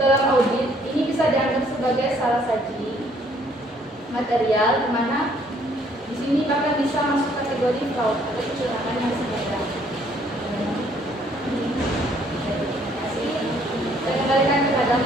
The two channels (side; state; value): both; normal; correlation 0.64